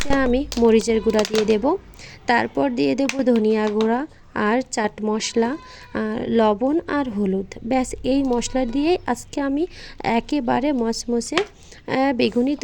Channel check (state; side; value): identical; both; correlation 1.00